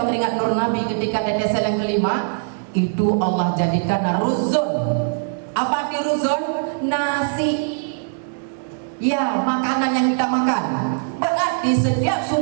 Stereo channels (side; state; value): left; silent; digital silence